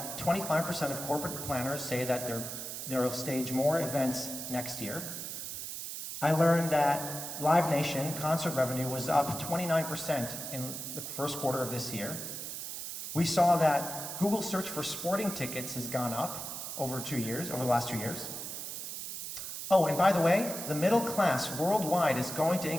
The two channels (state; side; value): noise; right; hiss, 7 dB below the sound